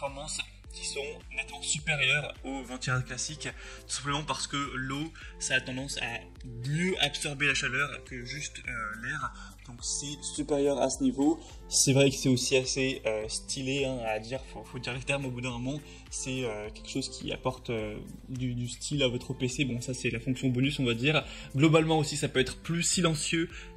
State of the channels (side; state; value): both; identical; correlation 1.00